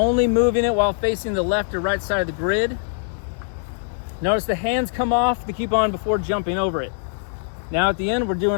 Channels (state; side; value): silent; right; 63 dB below the other